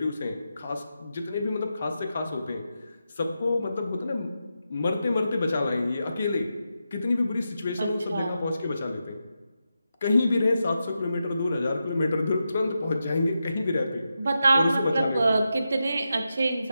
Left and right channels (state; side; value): inverted; both; correlation -0.88